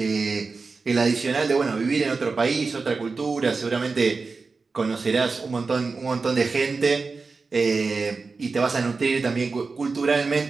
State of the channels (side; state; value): left; quieter; 4.3 dB